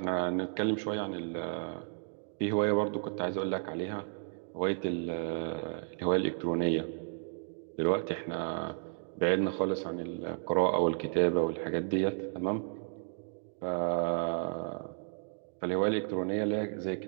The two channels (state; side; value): silent; left; 56 dB below the other